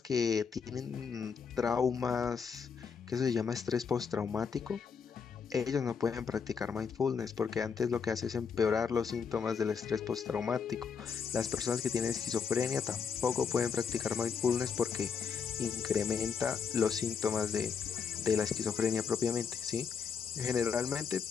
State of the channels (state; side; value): quieter; right; 6.2 dB